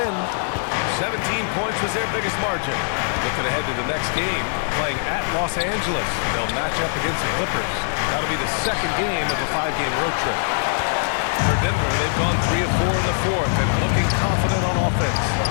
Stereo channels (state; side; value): silent; right; digital silence